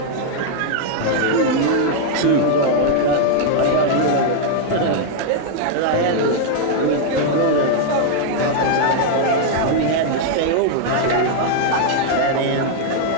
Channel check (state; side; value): different; both; correlation 0.00